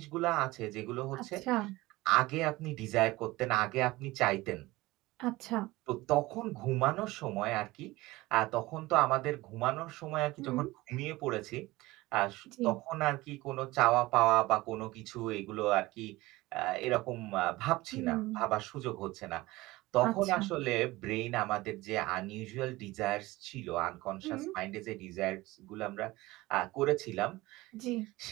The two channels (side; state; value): left; quieter; 19.7 dB